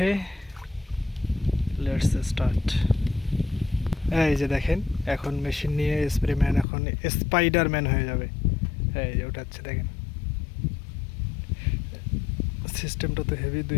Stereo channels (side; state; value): right; drops out; at 6.7 s